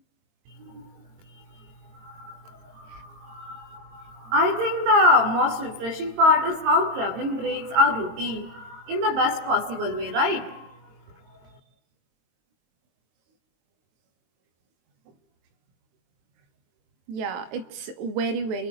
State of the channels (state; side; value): late; left; 23 ms